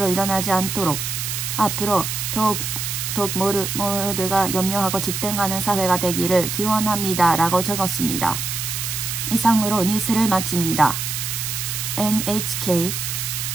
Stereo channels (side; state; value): right; noise; hiss, 3 dB below the sound